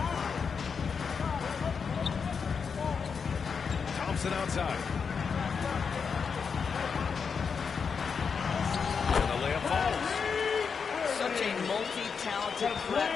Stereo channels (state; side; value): quieter; right; 5.9 dB